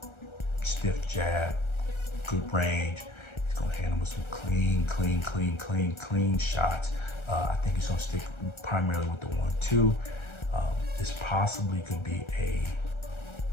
stiff jab, good range. He's gonna handle with some clean shots. I think he's gonna stick primarily with the 1-2. This possibly could be a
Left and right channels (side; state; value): right; late; 1.3 ms